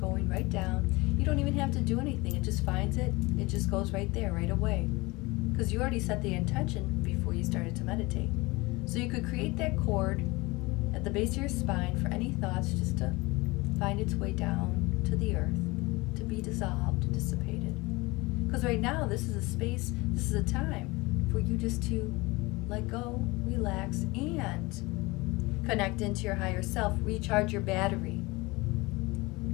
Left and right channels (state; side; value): quieter; right; 23.2 dB